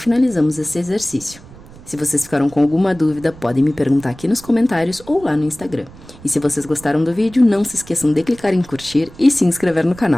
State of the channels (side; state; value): right; noise; rumble, 20 dB below the sound